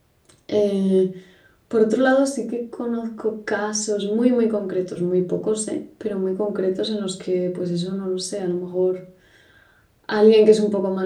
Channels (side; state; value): both; identical; correlation 1.00